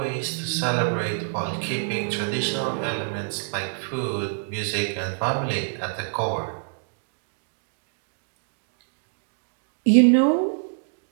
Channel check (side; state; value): left; silent; digital silence